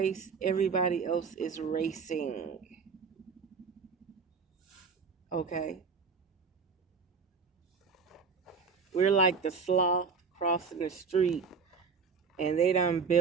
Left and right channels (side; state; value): left; quieter; 5.4 dB